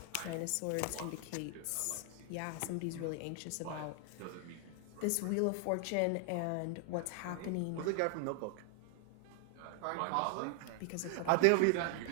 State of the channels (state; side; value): different; both; correlation 0.00